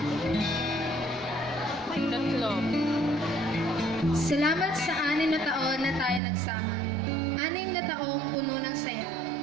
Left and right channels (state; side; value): drops out; left; at 6.2 s